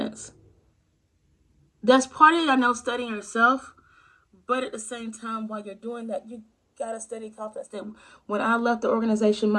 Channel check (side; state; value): both; identical; correlation 1.00